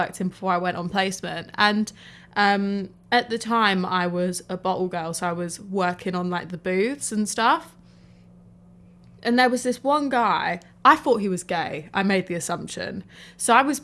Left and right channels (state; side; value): identical; both; correlation 1.00